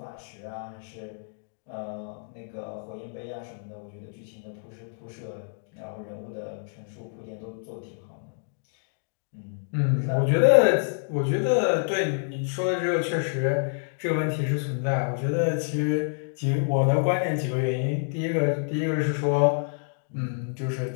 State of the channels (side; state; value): right; silent; digital silence